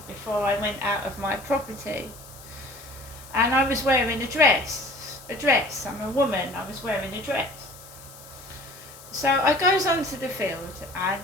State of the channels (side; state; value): left; noise; hiss, 19 dB below the sound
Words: before I went out of my property. And I was wearing a dress. I'm a woman, I was wearing a dress. So I goes onto the field, and